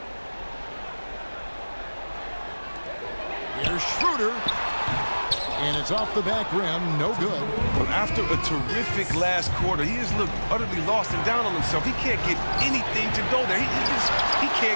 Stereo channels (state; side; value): inverted; both; correlation -1.00